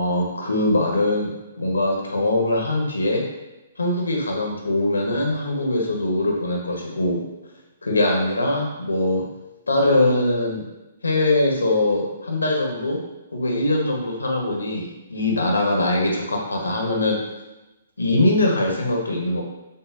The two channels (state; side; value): inverted; both; correlation -0.69